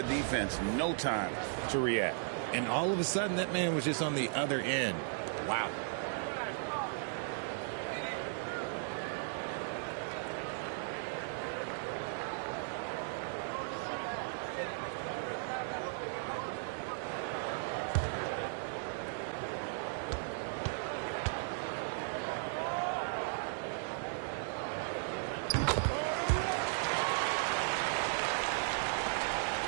defense no time to react. And all of a sudden, that man was just on the other end. Wow.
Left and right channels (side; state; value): left; silent; digital silence